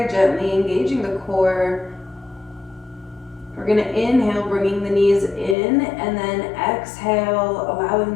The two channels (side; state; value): right; drops out; at 5.6 s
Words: gently engaging the core. We're going to inhale, bringing the knees in, and then exhale, allowing